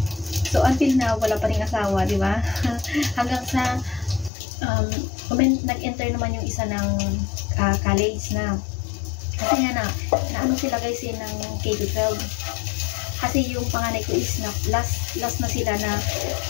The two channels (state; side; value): drops out; right; at 4.3 s